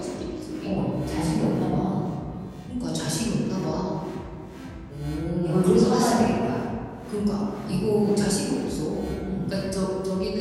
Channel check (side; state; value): both; identical; correlation 1.00